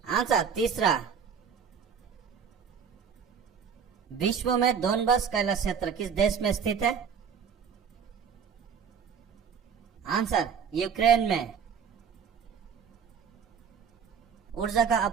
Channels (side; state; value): left; quieter; 6.9 dB